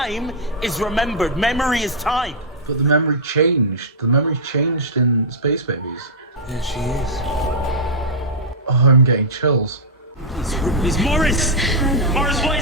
is remembered. Memory is time. But the memory changed. The memory changed in Space Babies. There she is. Oh, I'm getting chills. It's Morris! Morris, what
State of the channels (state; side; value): normal; both; correlation -0.08